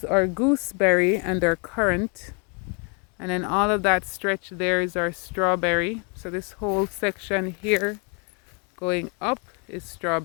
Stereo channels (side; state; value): right; quieter; 36.1 dB